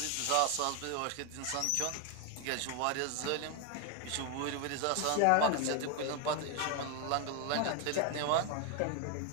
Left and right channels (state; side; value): different; both; correlation 0.01